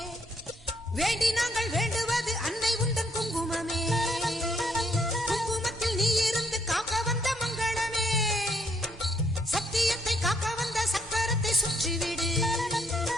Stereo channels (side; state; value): both; normal; correlation 0.70